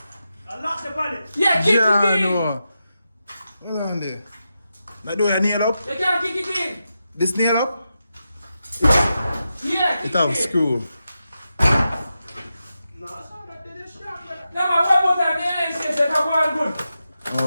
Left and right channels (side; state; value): both; inverted; correlation -0.89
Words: I locked the bonnet. Yeah, kick Yeah, it in. no. Hold on there. That door nail up? You can't kick it in. This nail up? Yeah, kick It have in. screw. No, that's not that they just strapped it. Now, man, one more time. The NA says that I'm going good.